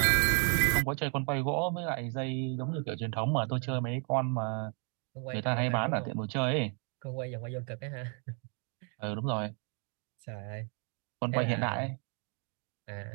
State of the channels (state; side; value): quieter; left; 39.7 dB